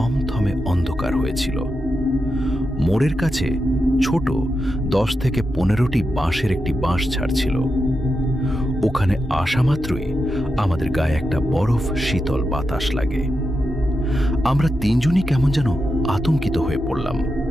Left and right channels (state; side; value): normal; both; correlation 0.88